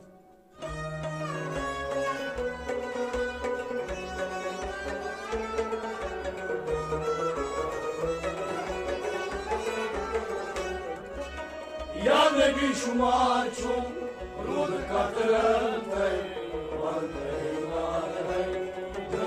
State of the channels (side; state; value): both; identical; correlation 1.00